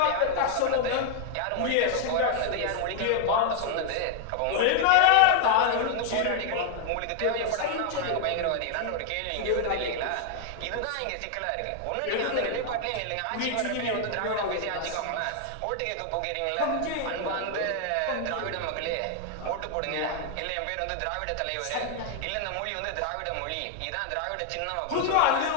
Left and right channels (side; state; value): both; different; correlation 0.00